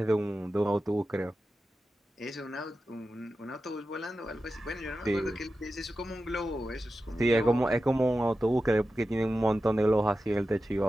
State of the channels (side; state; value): both; normal; correlation 0.92